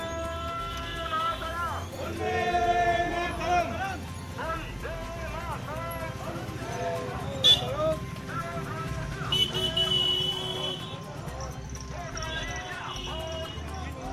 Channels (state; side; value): identical; both; correlation 1.00